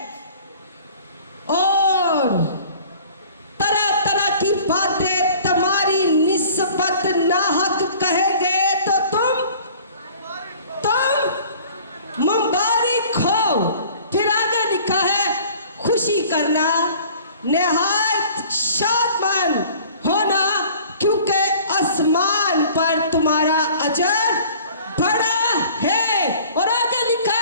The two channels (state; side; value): inverted; both; correlation -0.48